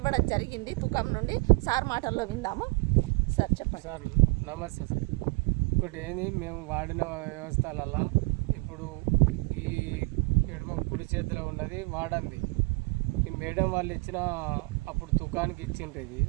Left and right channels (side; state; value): left; quieter; 29.6 dB